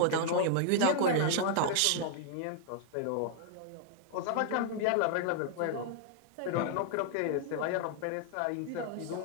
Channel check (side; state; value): both; different; correlation 0.00